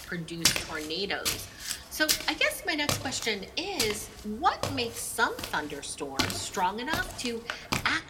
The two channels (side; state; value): both; identical; correlation 1.00